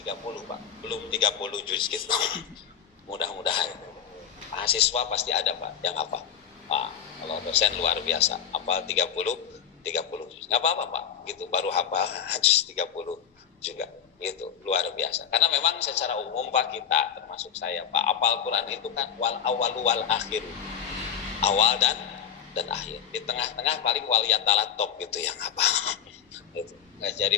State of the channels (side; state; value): right; quieter; 8.5 dB